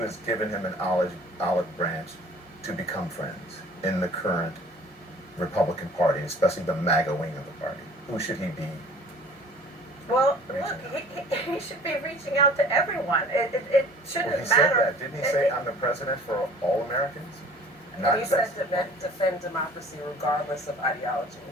him an olive branch to become friends in the current Republican Party, especially the MAGA wing of the party? Who should he be? Well, look, he should be reaching out to everyone. It shouldn't Well, he matter. said that. Didn't he say, I'm the president for all Americans? He said defend democracy regardless of ideology.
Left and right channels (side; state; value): both; normal; correlation 0.49